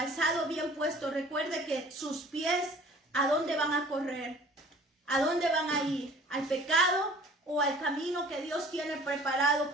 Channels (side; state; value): both; normal; correlation 0.49